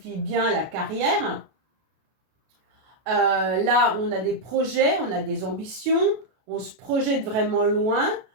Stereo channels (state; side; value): late; left; 32 ms